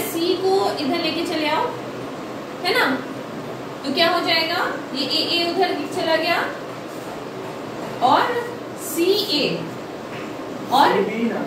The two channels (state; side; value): identical; both; correlation 1.00